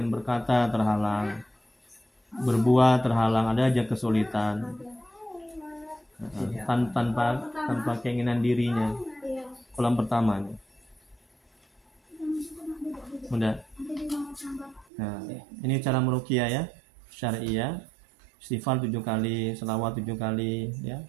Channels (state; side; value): drops out; left; at 14.9 s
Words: berkata terhalang, berbuat terhalang, ada aja kesulitan. Tanpa keinginan dirinya. Iya. Kolom pertama. Udah. Nah, ini cara meruqyah ya, syariah. Istighfar 7 kali, selawat 7 kali ya.